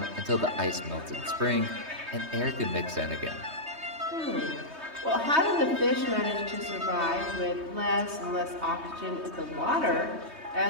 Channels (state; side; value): late; left; 3.2 ms